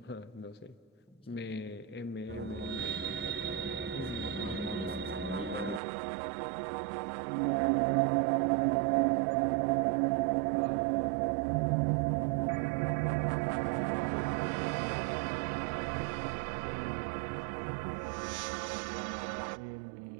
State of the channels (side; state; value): left; drops out; at 5.8 s